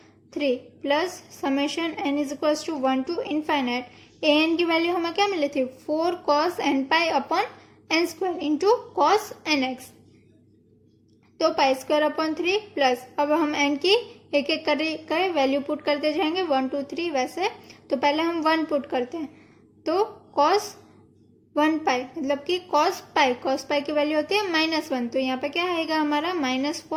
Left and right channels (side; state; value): both; identical; correlation 1.00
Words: 3 plus summation n is equal to 1 to infinite an की वैल्यू हमें क्या मिली थी, 4 cos n pi upon n square into cos nx। तो पाई स्क्वायर अपॉन 3 प्लस अब हम n की एक एक कर वैल्यू पुट करते जाएंगे 1 2 3 वैसे। तो पहले हम 1 पुट करते हैं तो cos 1 पाई मतलब कि cos पाई की वैल्यू होती है -1 तो यहाँ पे क्या आएगा हमारा